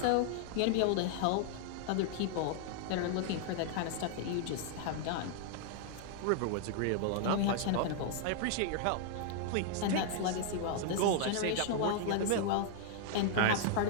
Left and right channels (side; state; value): both; different; correlation 0.00